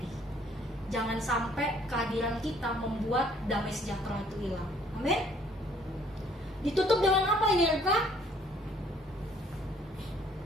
Jangan sampai kehadiran kita membuat damai sejahtera itu hilang. Amin. Ditutup dengan apa ini, Reka?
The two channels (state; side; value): normal; both; correlation 0.61